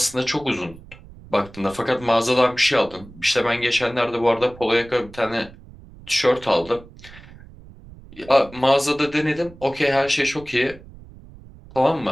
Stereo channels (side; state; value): right; noise; rumble, 20 dB below the sound